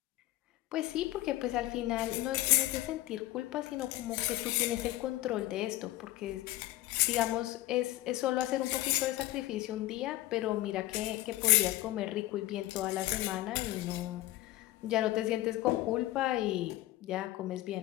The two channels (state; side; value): quieter; right; 16.4 dB